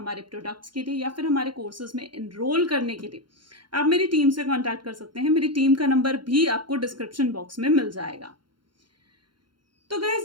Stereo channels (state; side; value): late; left; 0.72 ms